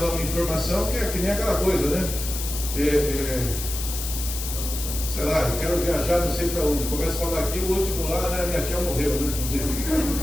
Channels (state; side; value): noise; left; hiss, 6 dB below the sound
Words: uma informação que é que nem aquela coisa, né? Sei lá, eu quero viajar não sei para onde, começa a falar aqui, o último lá, né? Minha tia morreu, né?